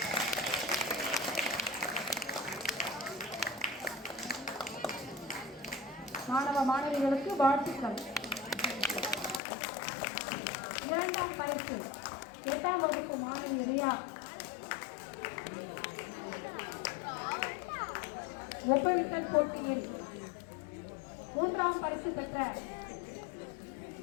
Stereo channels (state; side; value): drops out; right; at 9.4 s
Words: மாணவ மாணவிகளுக்கு வாழ்த்துக்கள். இரண்டாம் பரிசு 8ஆம் வகுப்பு மாணவி ரியா. ஒப்புவித்தல் போட்டியில் 3ஆம் பரிசு பெற்ற